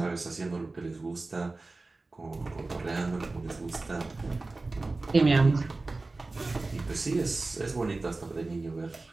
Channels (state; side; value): quieter; left; 3.4 dB